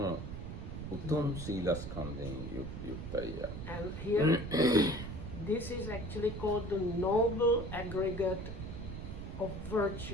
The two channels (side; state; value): right; noise; rumble, 7 dB below the sound